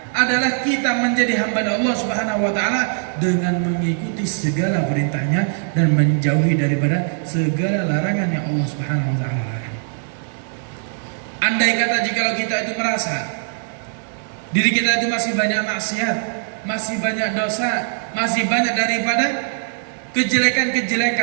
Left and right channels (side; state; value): left; silent; digital silence